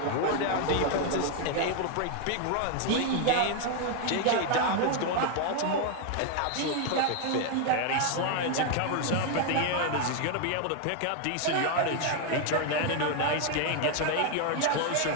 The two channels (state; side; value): different; both; correlation 0.01